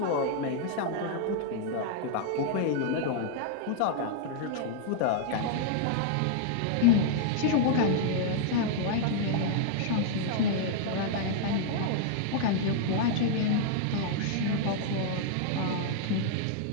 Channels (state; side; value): different; both; correlation -0.01